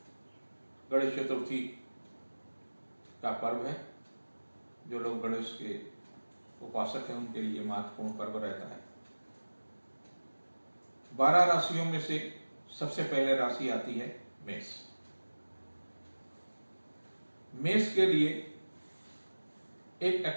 गणेश चतुर्थी का पर्व है। जो लोग गणेश के उपासक हैं उनके लिए महत्वपूर्ण पर्व रहता है। 12 राशियों में से सबसे पहले राशि आती है मेष। मेष के लिए एक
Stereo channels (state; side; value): inverted; both; correlation -1.00